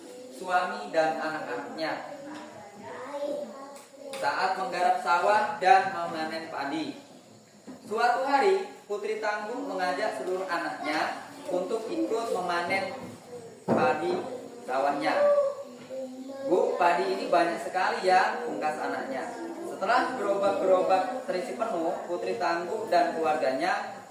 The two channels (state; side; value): identical; both; correlation 1.00